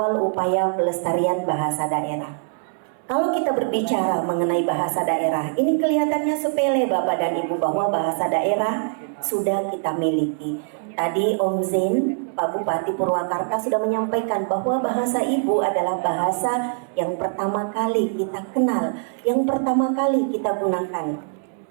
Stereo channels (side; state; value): left; silent; digital silence